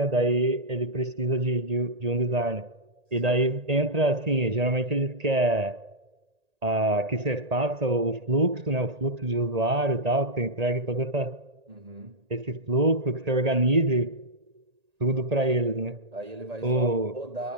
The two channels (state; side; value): late; left; 1.8 ms